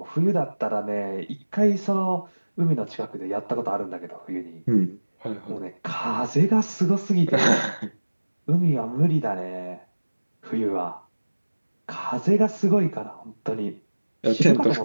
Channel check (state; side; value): inverted; both; correlation -1.00